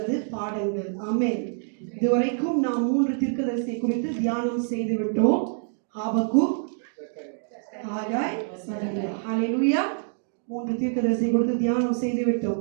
பாடங்கள். ஆமென். இதுவரைக்கும் நாம் 3 தீர்க்கதரிசி குறித்து தியானம் செய்து விட்டோம். ஆபக்கூக், ஆகாய், சகரியா. ஹல்லேலூயா. 3 தீர்க்கதரிசி குறித்து தியானம் செய்து விட்டோம்.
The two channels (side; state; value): left; silent; digital silence